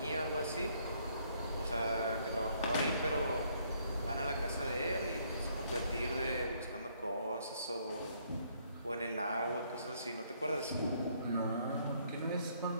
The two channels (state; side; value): inverted; both; correlation -0.68